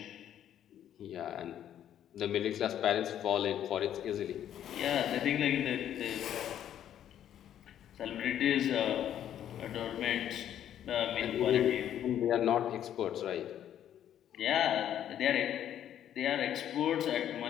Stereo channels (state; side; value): quieter; right; 10.6 dB